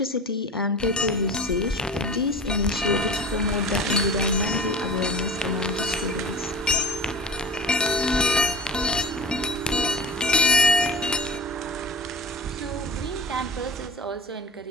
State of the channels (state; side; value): normal; both; correlation 0.36